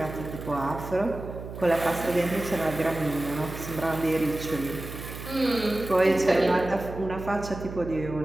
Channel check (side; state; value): right; noise; hum, 10 dB below the sound